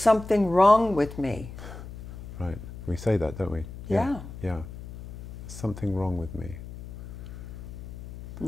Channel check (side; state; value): left; noise; hum, 12 dB below the sound